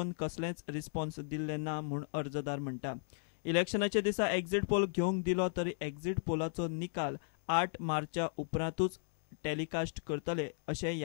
कसलेंच रिस्पॉन्स दिल्लें ना म्हूण अर्जदार म्हणटा. इलेक्शनाच्या दिसा एक्झिट पोल घेवंक दिलो तरी एक्झिट पोलाचो निकाल 8 मार्चा उपरांतूच टेलिकास्ट करतले अशें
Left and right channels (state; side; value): silent; right; digital silence